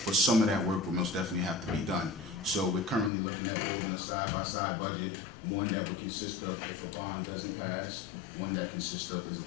but some of that work will most definitely have to be done. So we're currently looking at building a side-by-side budget, one that would consist of if a bond doesn't pass, one that consists of is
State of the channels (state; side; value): drops out; right; at 3.1 s